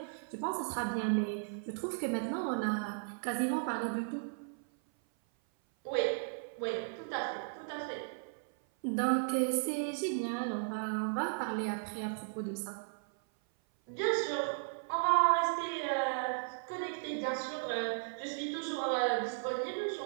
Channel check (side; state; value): left; silent; 54 dB below the other